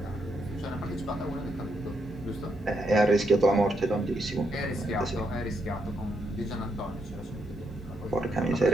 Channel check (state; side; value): normal; both; correlation 0.79